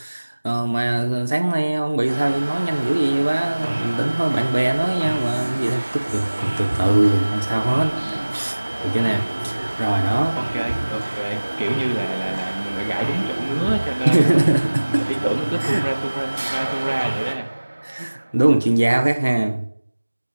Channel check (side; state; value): both; inverted; correlation -1.00